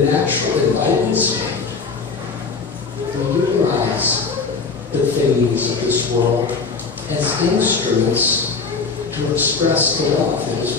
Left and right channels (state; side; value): quieter; right; 4.7 dB